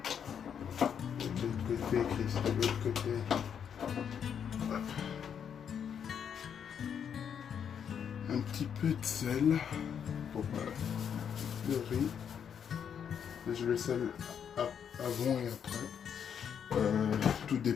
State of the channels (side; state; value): right; quieter; 7.9 dB